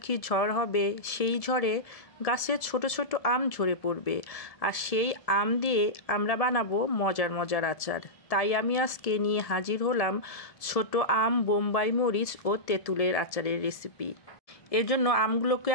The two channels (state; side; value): late; right; 1.7 ms